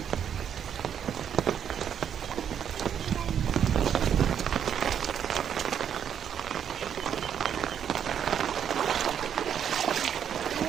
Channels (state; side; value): quieter; left; 8.6 dB